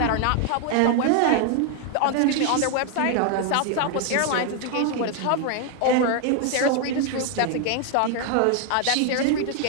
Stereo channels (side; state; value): both; different; correlation 0.01